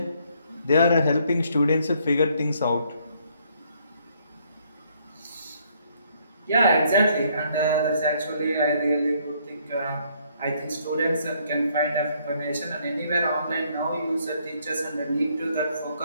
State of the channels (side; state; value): both; inverted; correlation -0.67